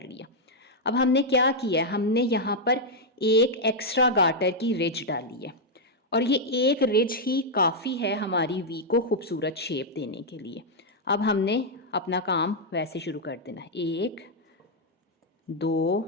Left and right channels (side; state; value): both; normal; correlation -0.03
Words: लिया। अब हमने क्या किया है, हमने यहाँ पर एक एक्स्ट्रा गार्टर की रिज डाली है, और ये एक रिज ही काफ़ी है हमारी वी को खूबसूरत शेप देने के लिए। अब हमने अपना काम वैसे शुरू कर देना है। 1 2